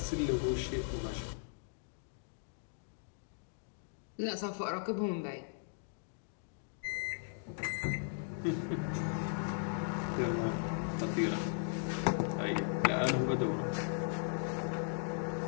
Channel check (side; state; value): right; silent; digital silence